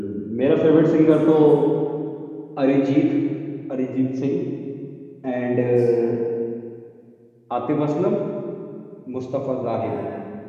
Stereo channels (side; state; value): both; identical; correlation 1.00